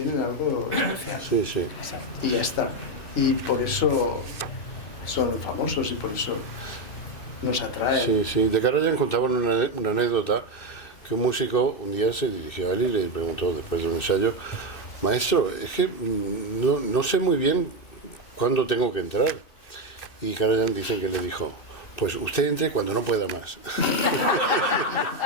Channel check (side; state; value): right; late; 2.6 ms